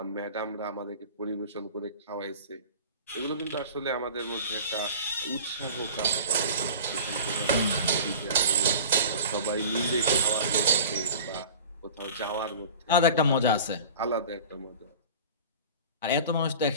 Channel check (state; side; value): inverted; both; correlation -0.38